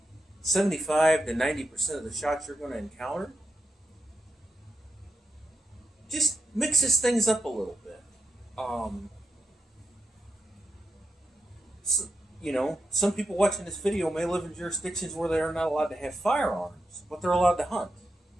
75 to 90% of the shots you're going to encounter. Just mixes things up a little bit. Some people watching this video may live in jurisdictions where they are not allowed to have firearms, but they're allowed to hunt.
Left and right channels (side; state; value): both; normal; correlation 0.85